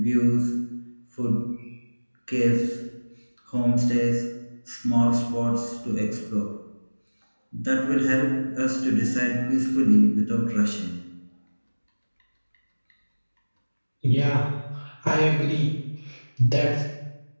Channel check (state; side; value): inverted; both; correlation -1.00